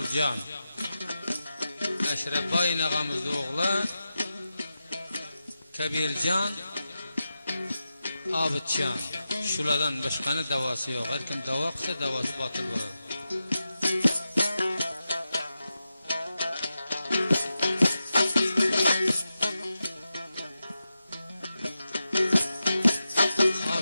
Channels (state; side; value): inverted; both; correlation -0.91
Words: Eşrefa inağamızda oğlu Kabircan, Abidcan. Şuradan başkanı davası yok. Her kim dava kısa davası batıl olur.